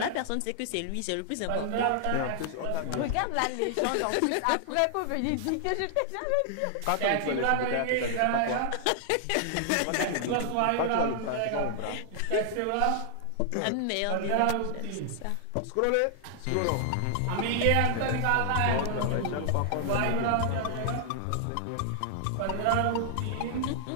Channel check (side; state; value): both; different; correlation 0.00